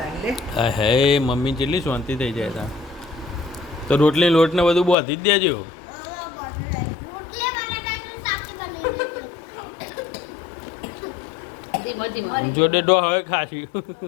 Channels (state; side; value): drops out; right; at 5.0 s